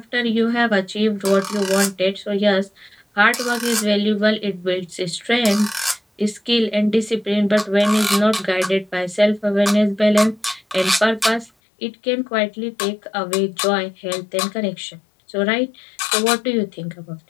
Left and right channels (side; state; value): right; drops out; at 11.5 s